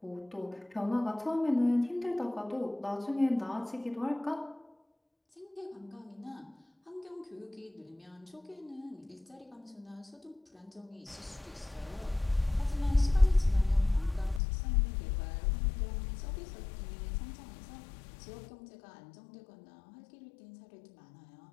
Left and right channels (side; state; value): right; drops out; at 14.4 s